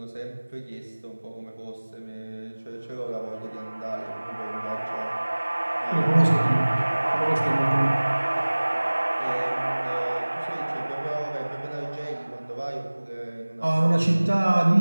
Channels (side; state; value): both; inverted; correlation -1.00